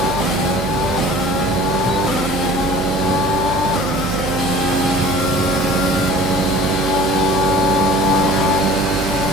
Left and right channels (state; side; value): noise; right; hum, 6 dB below the sound